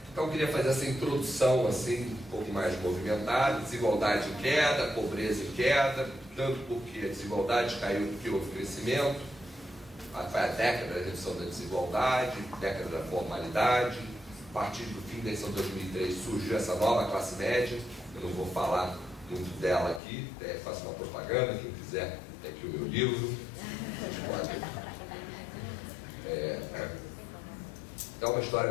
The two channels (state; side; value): drops out; right; at 20.0 s